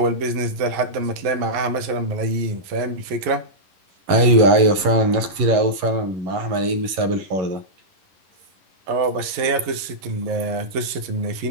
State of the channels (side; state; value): left; late; 11 ms